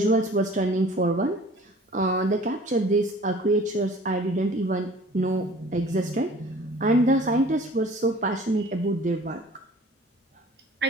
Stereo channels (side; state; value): both; normal; correlation 0.48